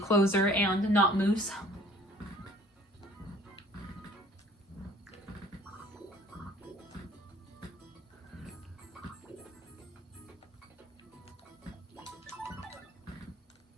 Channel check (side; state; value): both; normal; correlation 0.53